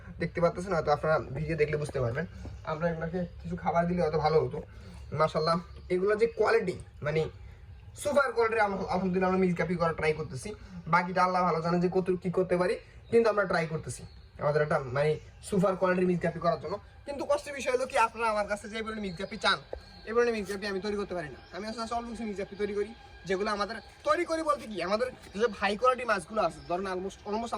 দেখতে পাচ্ছেন হয়তো আপনারা ভিডিও দেখলে বুঝতে পারবেন। আমরা এগুলোকে কিছু খাবার দিলে হয়তো ভালো হতো। মাশাআল্লাহ এগুলো যে কোয়ালিটি মানে সুপার কোয়ালিটির, আলহামদুলিল্লাহ আমরা মিক্স গাপ্পি করার ট্রাই করতেছি। বাকিটা আল্লাহ ভালো জানে যে কত কী করতে পারি, কিন্তু আমরা ট্রাই করতেছি আমাদের একটা মানে সুপার কোয়ালিটির মিক্স গাপ্পি করার জন্য। কিন্তু কষ্টের বিষয় হলো কি, আপনারা আমার কাছে যে বলে মিক্স গাপ্পি চান, এবার মিক্স গাপ্পি আমি তৈরি করতে পারি না। আমি আসলে অল্প কিছু মিক্স গাপ্পি তৈরি করি, যেগুলো আমাদের তৈরি করি বলতে কি, আমাদের যেসব হাই কোয়ালিটি মাছগুলো আছে, ধরেন অলমোস্ট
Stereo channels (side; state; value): both; identical; correlation 1.00